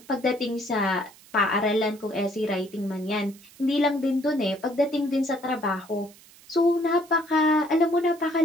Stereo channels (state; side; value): noise; right; hiss, 24 dB below the sound